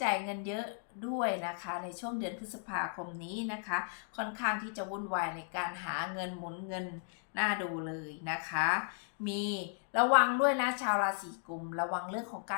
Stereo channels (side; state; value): right; silent; 54 dB below the other